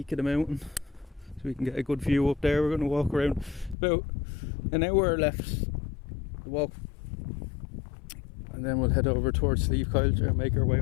of the mountain, so we can get a good view up there. We're going to walk around about an hour left to walk, and then we'll head over towards Slieve Coil and make our way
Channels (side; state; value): right; drops out; at 3.8 s